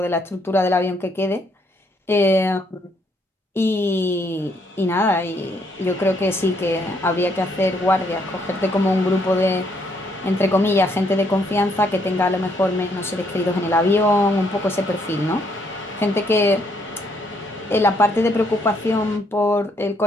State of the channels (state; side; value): normal; both; correlation 0.71